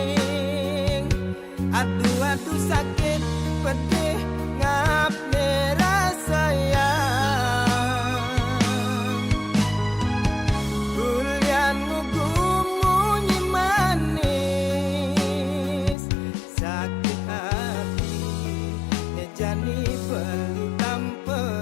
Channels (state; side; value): drops out; right; at 16.0 s